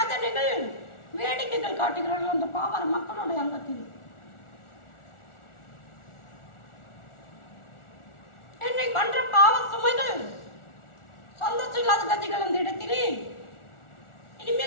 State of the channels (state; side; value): late; right; 1.4 ms